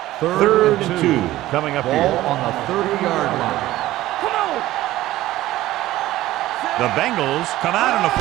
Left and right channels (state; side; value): quieter; left; 15.7 dB